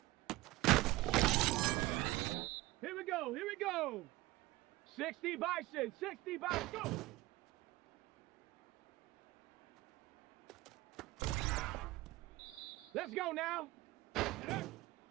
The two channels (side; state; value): left; quieter; 18.9 dB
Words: Here we go, here we go! 60 bison, 60 bison, go! Let's go now!